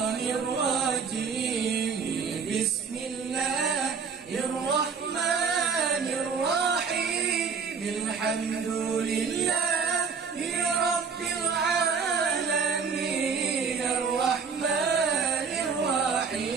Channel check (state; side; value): quieter; left; 5.7 dB